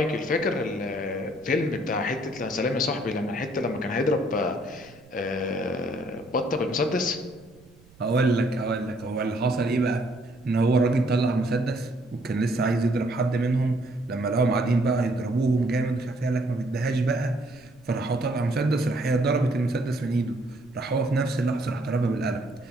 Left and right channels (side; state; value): right; noise; rumble, 26 dB below the sound